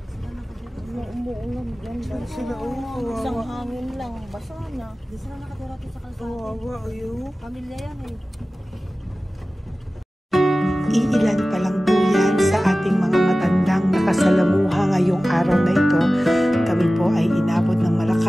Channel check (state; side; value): normal; both; correlation 0.96